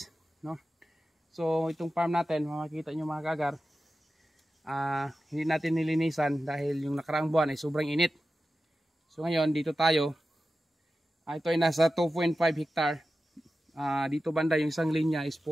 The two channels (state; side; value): normal; both; correlation 0.93